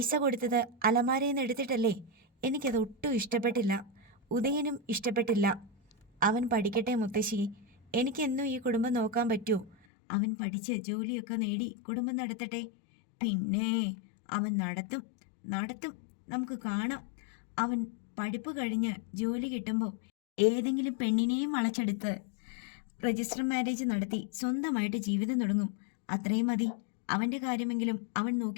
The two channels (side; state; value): right; drops out; at 9.8 s